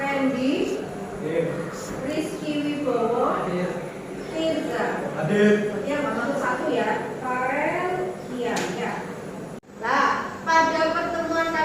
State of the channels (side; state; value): both; identical; correlation 1.00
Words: Randy, Rizky Wibowo, Tirza. Ya, masuk satu ya. Farel, iya, ya. Nah, pada pertemuan